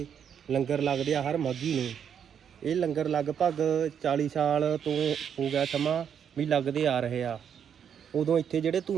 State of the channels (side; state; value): left; quieter; 8.2 dB